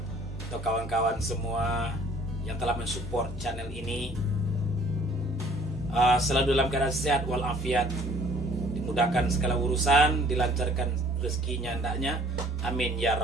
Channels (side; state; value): both; normal; correlation 0.56